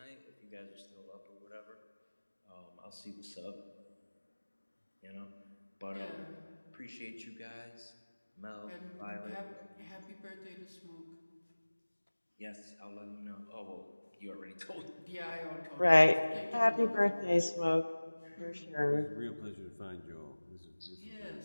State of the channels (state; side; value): inverted; both; correlation -1.00